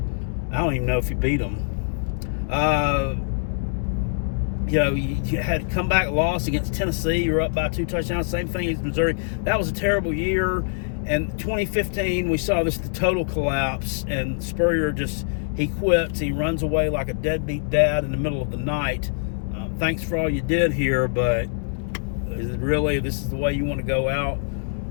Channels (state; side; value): silent; right; digital silence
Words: I don't even know if he beat them. You know, you had a comeback loss against Tennessee. You were up by 2 touchdowns. Same thing as Missouri. That was a terrible year. And 2015, we saw the total collapse. And Spurrier he quits. He runs away like a deadbeat dad in the middle of the night. Thanks for all you did here, but this is the way you want to go out?